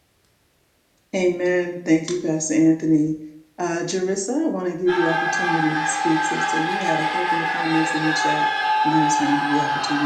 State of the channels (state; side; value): identical; both; correlation 1.00